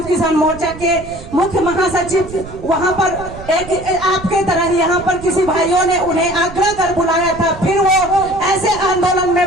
किसान मोर्चा के मुख्य महासचिव वहां पर एक आपके तरह यहाँ पर किसी भाइयों ने उन्हें आग्रह कर बुलाया था। फिर वो ऐसे आंदोलन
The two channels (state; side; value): noise; right; rumble, 15 dB below the sound